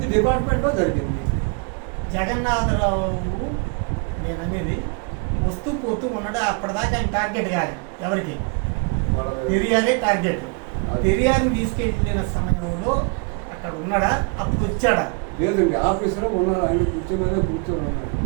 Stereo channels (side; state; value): left; quieter; 34.8 dB